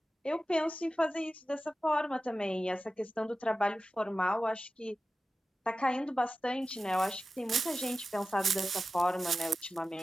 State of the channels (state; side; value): normal; both; correlation 0.94